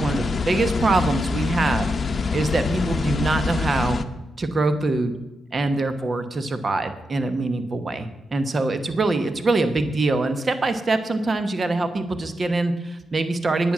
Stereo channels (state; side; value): normal; both; correlation 0.86